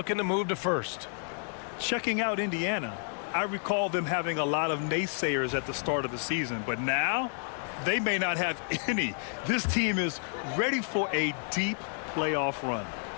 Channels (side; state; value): right; silent; 58 dB below the other